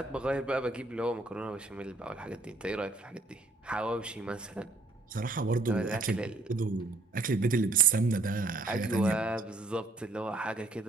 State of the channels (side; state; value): left; quieter; 3.2 dB